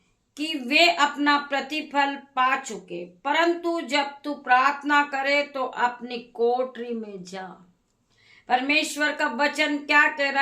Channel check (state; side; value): identical; both; correlation 1.00